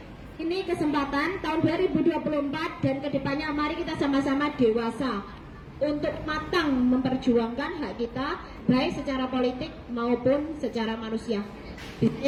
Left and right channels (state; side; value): identical; both; correlation 1.00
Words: ini kesempatan tahun 2024 dan kedepannya mari kita sama-sama dewasa untuk matang memperjuangkan hak kita baik secara politik maupun secara manusia.